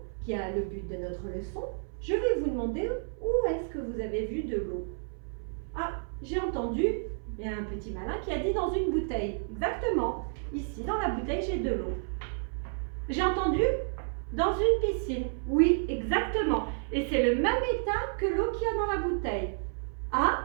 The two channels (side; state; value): left; silent; 57 dB below the other